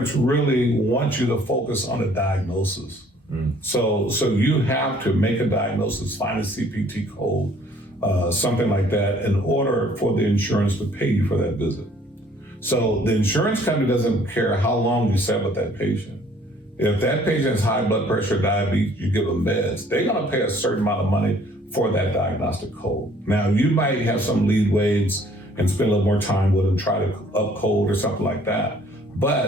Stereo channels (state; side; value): normal; both; correlation 0.58